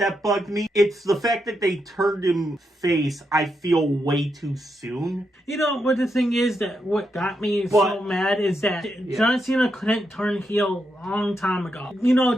bugged me. It's the fact that they turned him face, I feel, way too soon. What the thing is that what got me so mad is that John Cena couldn't turn heel a long time ago.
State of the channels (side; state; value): both; normal; correlation 0.83